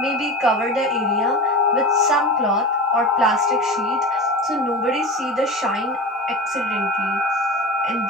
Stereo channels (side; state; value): both; normal; correlation 0.30